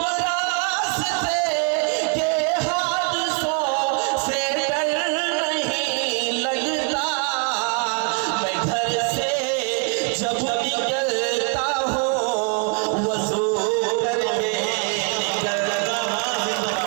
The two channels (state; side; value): quieter; left; 37.3 dB